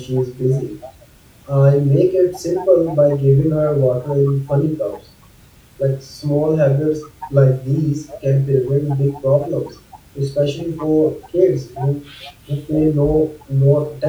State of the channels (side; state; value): both; identical; correlation 1.00